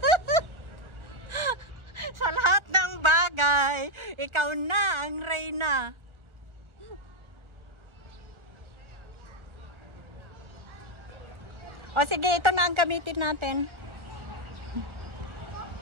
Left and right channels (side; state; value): left; late; 1.4 ms